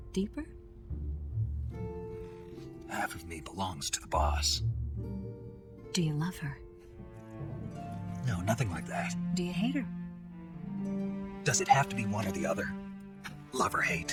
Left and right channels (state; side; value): identical; both; correlation 1.00